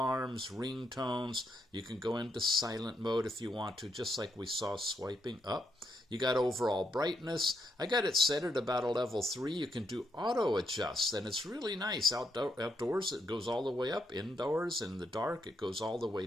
ringtones. You can go into silent mode if you want to, just like we saw swiping up. You got overall brightness. I got it set at about a level 3. You can do auto adjust, and it's really nice. Outdoors, it goes all the way up. Indoors, in the dark, it goes all the way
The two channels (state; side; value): normal; both; correlation 0.79